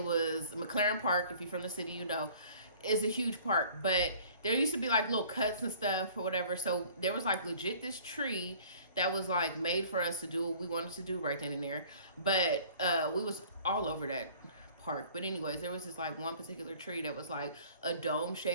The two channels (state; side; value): inverted; both; correlation -0.51